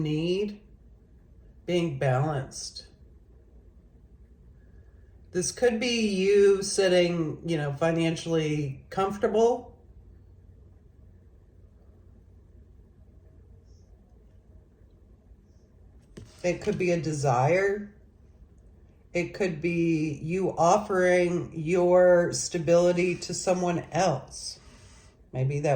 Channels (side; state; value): both; identical; correlation 1.00